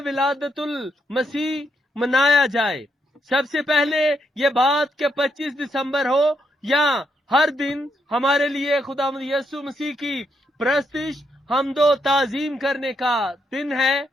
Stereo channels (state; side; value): normal; both; correlation 0.78